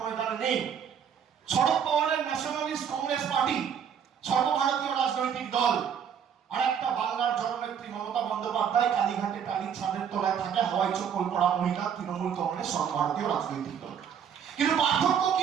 নেই। শরদ পাওয়ারের ন্যাশনালিস্ট কংগ্রেস পার্টি সর্বভারতীয় রাজনৈতিক দল। আর একটা বাংলার জননেত্রী মমতা বন্দ্যোপাধ্যায় কালীঘাটে টালির ছাদের তলায় থাকে হাওয়াই চপ্পল পরা মহিলা, তৃণমূল কংগ্রেস সর্বভারতীয় রাজনৈতিক দল। কিন্তু পার্থক্য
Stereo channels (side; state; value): left; quieter; 8.0 dB